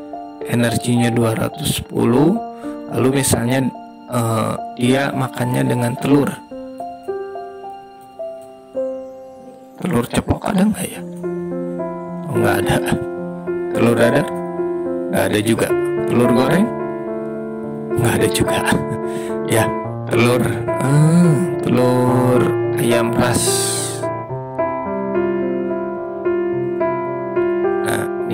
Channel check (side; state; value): both; identical; correlation 1.00